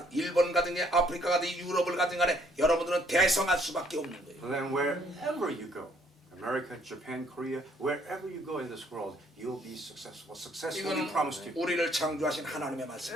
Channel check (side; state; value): both; normal; correlation 0.65